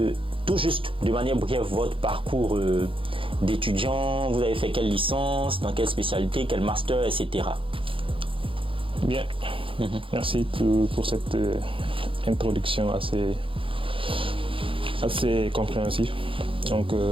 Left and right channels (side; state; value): left; late; 0.25 ms